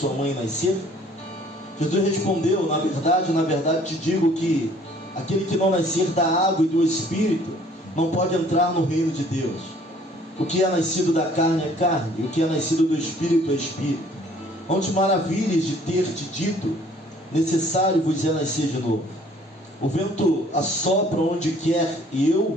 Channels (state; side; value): normal; both; correlation 0.57